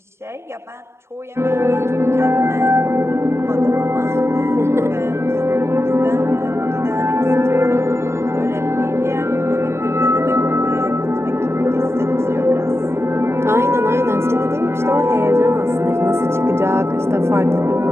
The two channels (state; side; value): late; left; 0.13 ms